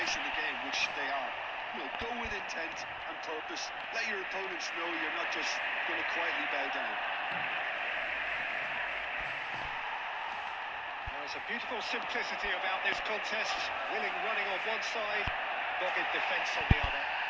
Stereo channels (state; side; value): identical; both; correlation 1.00